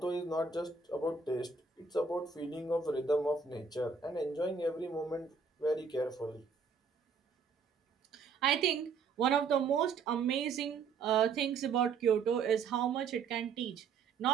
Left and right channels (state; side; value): quieter; left; 5.3 dB